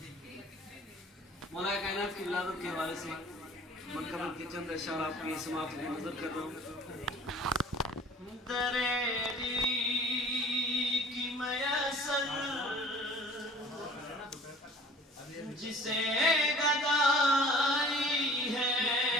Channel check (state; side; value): normal; both; correlation 0.48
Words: مولا کائنات کی ولادت کے حوالے سے منقبل کے چند اشعار آپ کی سماعت میں نظر کر رہا ہوں. دریری کی میسر جسے گدائی ہے.